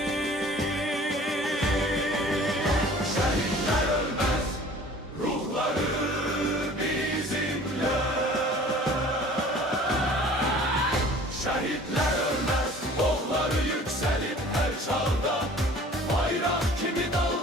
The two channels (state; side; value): normal; both; correlation 0.48